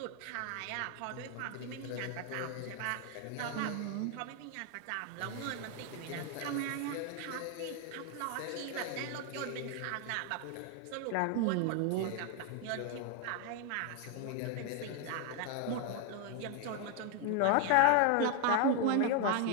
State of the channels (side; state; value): both; different; correlation 0.01